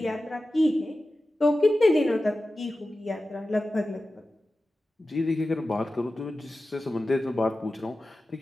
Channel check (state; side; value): normal; both; correlation 0.94